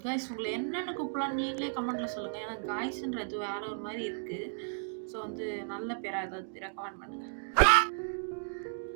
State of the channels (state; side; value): silent; left; digital silence